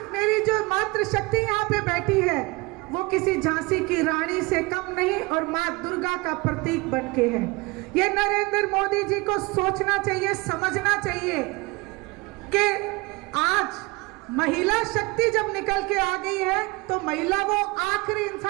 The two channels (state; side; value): quieter; left; 24.6 dB